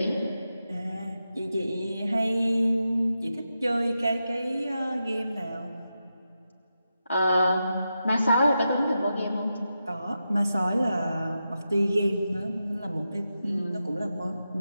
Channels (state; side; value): inverted; both; correlation -0.88